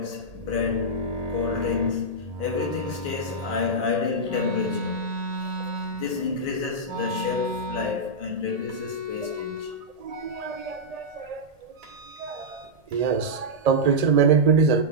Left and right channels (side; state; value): left; late; 1.8 ms